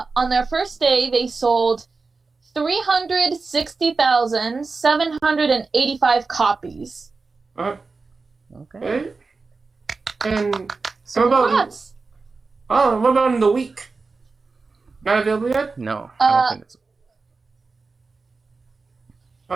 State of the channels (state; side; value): quieter; left; 4.1 dB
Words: their first day. They sold 360,785 copies. Okay. And so what about in the week? Not available yet? No, I don't think it's.